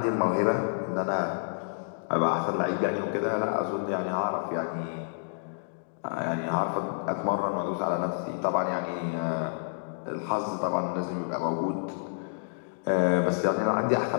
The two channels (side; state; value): right; silent; digital silence